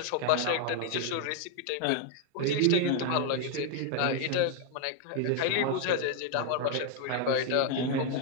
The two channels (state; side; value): different; both; correlation 0.00